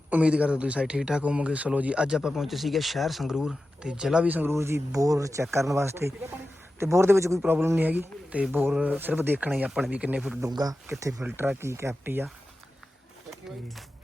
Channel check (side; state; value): both; normal; correlation 0.93